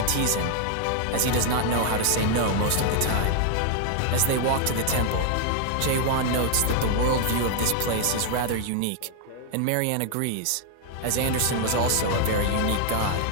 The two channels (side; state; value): both; different; correlation 0.00